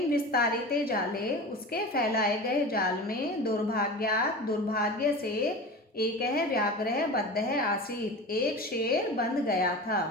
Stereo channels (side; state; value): both; normal; correlation 0.32